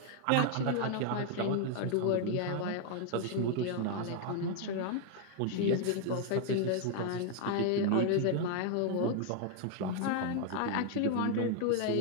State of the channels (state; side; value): different; both; correlation 0.00